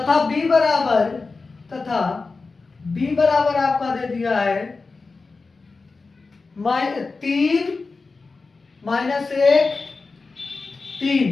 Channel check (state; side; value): quieter; right; 4.1 dB